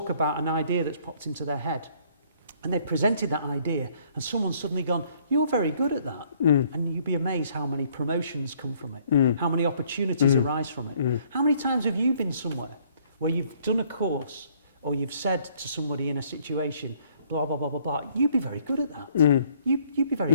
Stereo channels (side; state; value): both; inverted; correlation -0.63